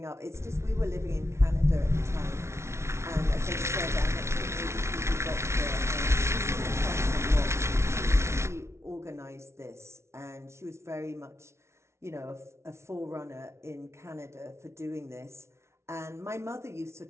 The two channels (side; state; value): left; late; 0.13 ms